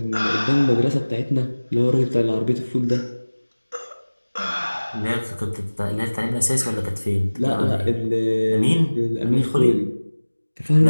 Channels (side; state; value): both; inverted; correlation -1.00